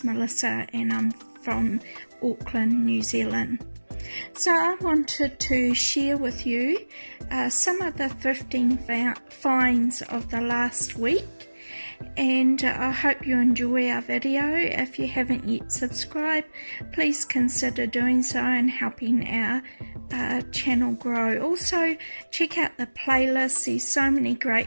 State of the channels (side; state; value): both; inverted; correlation -1.00